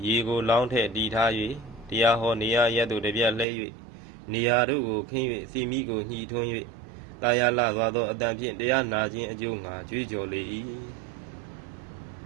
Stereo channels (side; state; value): left; drops out; at 3.5 s